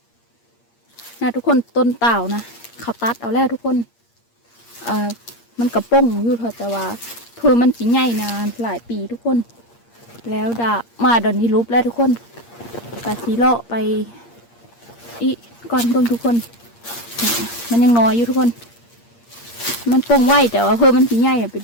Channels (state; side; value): late; right; 8.6 ms